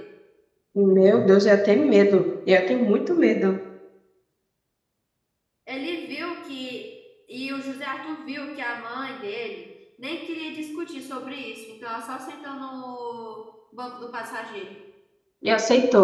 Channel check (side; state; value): both; identical; correlation 1.00